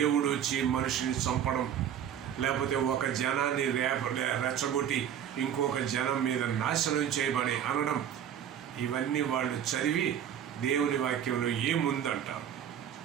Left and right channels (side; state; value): left; quieter; 9.4 dB